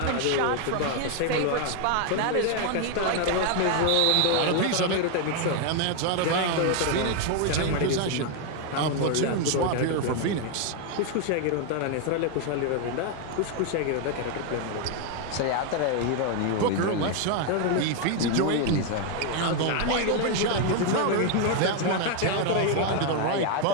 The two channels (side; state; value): both; different; correlation 0.01